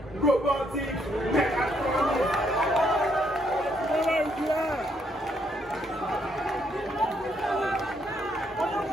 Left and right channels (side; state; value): both; normal; correlation 0.73